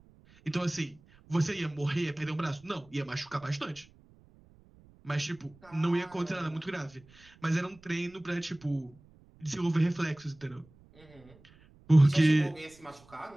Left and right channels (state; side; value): noise; right; rumble, 27 dB below the sound